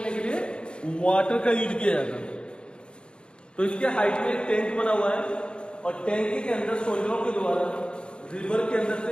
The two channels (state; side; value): late; right; 0.053 ms